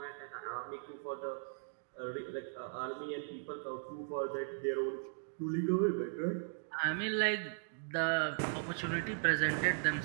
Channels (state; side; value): silent; left; digital silence